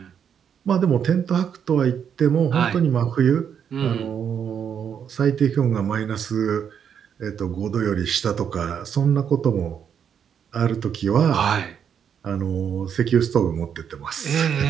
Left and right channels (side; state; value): left; quieter; 8.0 dB